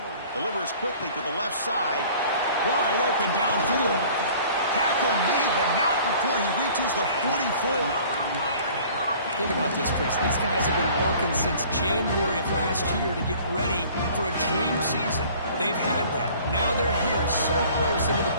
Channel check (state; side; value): inverted; both; correlation -0.50